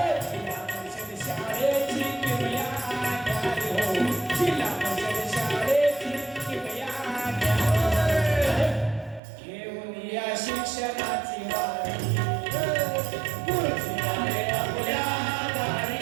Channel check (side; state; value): left; drops out; at 9.2 s